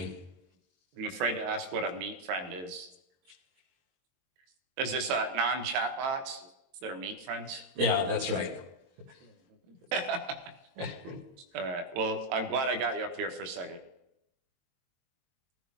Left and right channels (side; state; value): left; late; 22 ms